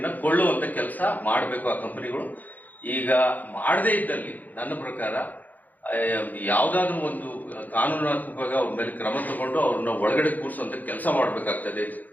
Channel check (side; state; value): right; late; 0.082 ms